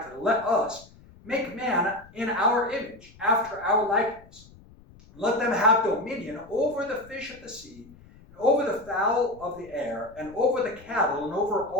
to it. Let us make man in our image, after our likeness. Let them have dominion over the fish of the sea, and over the fowl of the air, and over the cattle, and over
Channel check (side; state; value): left; noise; rumble, 23 dB below the sound